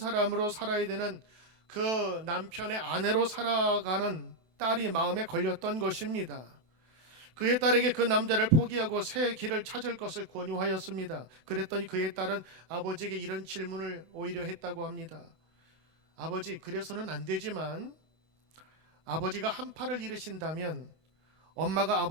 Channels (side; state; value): left; late; 32 ms